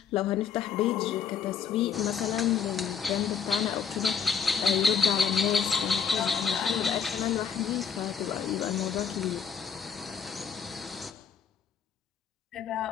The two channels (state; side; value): quieter; right; 6.9 dB